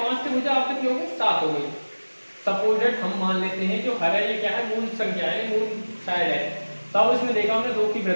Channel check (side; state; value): both; inverted; correlation -1.00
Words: थी भुजा, अब कितनी हो गई? 7 हो गई। सपोजेड हम मान लेते हैं जो हर है ये क्या है? मूल संख्या है, मूल साइड है। तब इसमें देखा हमने 2 की